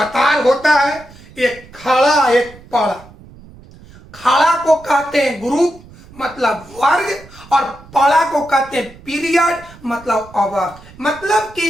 होता है, एक खड़ा एक पड़ा। खड़ा को कहते हैं ग्रुप मतलब वर्ग, और पड़ा को कहते हैं पीरियड मतलब आवर्त। मतलब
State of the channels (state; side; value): noise; right; rumble, 22 dB below the sound